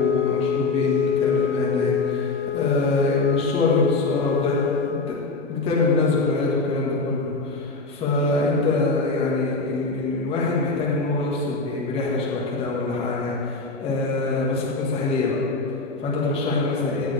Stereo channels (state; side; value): quieter; right; 3.6 dB